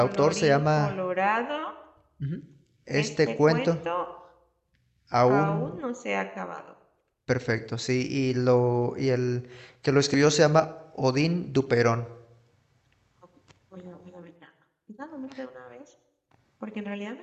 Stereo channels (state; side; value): identical; both; correlation 1.00